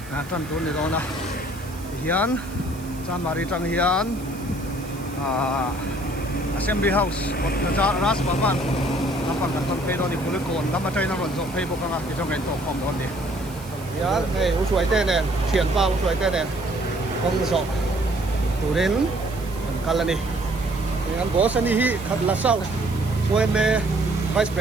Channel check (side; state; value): right; noise; hiss, 20 dB below the sound